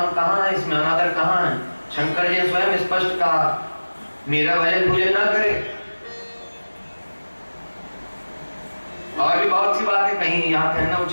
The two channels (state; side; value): inverted; both; correlation -1.00